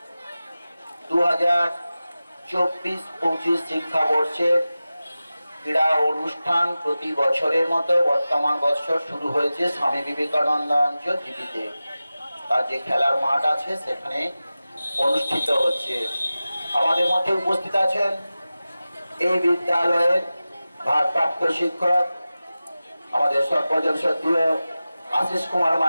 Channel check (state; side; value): inverted; both; correlation -0.96